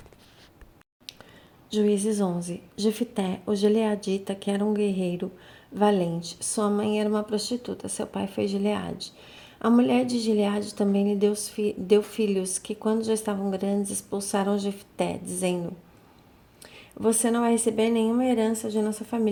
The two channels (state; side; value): identical; both; correlation 1.00